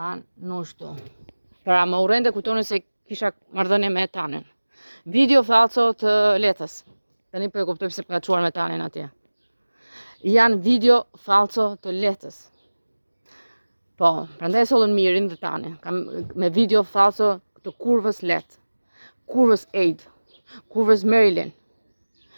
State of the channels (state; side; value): inverted; both; correlation -1.00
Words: Nushtu. Pra më urrente kujtonë se kisha marrëdhënie me Tanen. Video falso të letës. Tani po e kuptoj pse ka çuar me Tanen atje. Janë video falso të letës. Po, prandaj sollën mirin dhe Tanen. Me video falso të kurvës let. Kurvës Aid. Kurvës Marilyn,